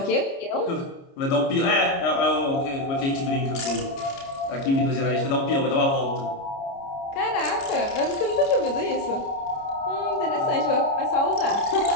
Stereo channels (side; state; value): right; late; 29 ms